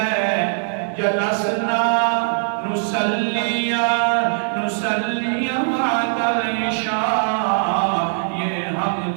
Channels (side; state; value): left; silent; digital silence